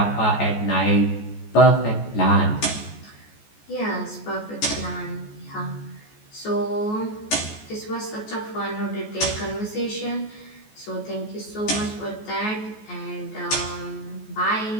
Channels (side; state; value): right; late; 14 ms